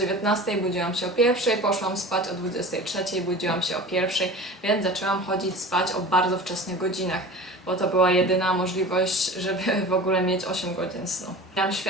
budziłam się o 1, poszłam spać o 23, budziłam się o 1, więc zaczęłam chodzić spać o bardzo wczesnych godzinach, bo to była jedyna możliwość, żeby w ogóle mieć 8 godzin snu. Miałam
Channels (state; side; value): normal; both; correlation 0.36